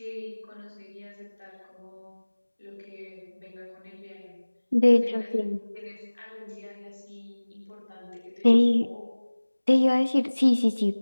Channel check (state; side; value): inverted; both; correlation -1.00